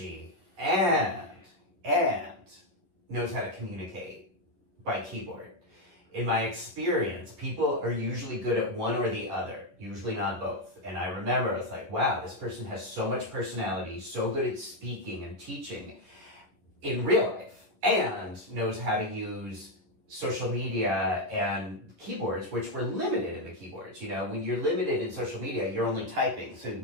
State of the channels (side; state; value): left; late; 11 ms